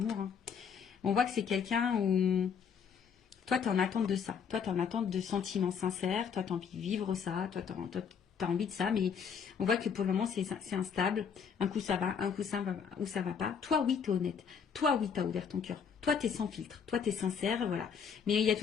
Hein. On voit que c'est quelqu'un où... Toi, tu es en attente de ça. Toi, tu es en attente de sentiments sincères. Toi, tu as envie de vivre ça. Toi, tu as envie de ça. Mais on voit que pour le moment, c'est instable. Un coup, ça va. Un coup, ça va pas. Toi, oui, tu es honnête. Toi, oui, tu as ouvert ton cœur. Toi, tu es sans filtre. Toi, tu es sincère. Voilà. Mais il y a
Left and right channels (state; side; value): quieter; right; 6.8 dB